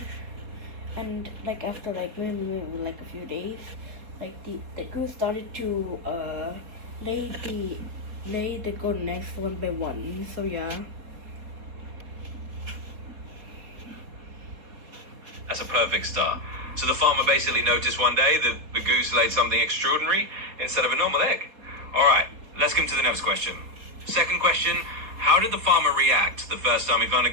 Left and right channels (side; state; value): left; late; 4.2 ms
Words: And like after maybe like a few days, like the goose started to lay the golden eggs one by one. So yeah. That's a perfect start. So the farmer basically noticed one day that the goose laid something extraordinary instead of a normal egg. All right, let's come to the next question. Second question, how did the farmer react the first time he found a